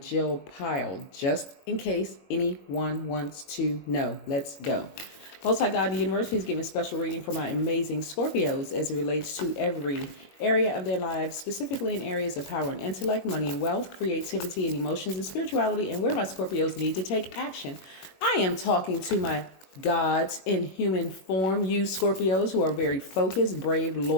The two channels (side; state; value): right; late; 21 ms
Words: Pyle, just in case anyone wants to know. Let's go. Most High God in the universe, please give me a special reading for my amazing Scorpios as it relates to every area of their lives, specifically in areas of power and intellect, money and wealth, creativity and emotions and spirituality, and where my Scorpios need to take action. I am talking to my gods in human form, you Scorpios who are very focused, brave,